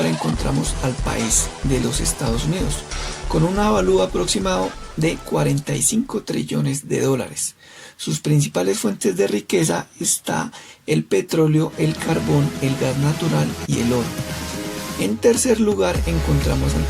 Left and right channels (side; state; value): both; identical; correlation 1.00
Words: encontramos al país de los Estados Unidos, con un avalúo aproximado de 45 trillones de dólares. Sus principales fuentes de riqueza está el petróleo, el carbón, el gas natural y el oro. En tercer lugar encontramos al